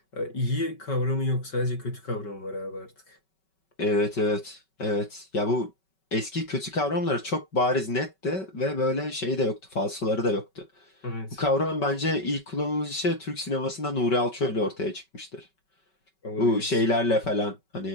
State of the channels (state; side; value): late; right; 5.3 ms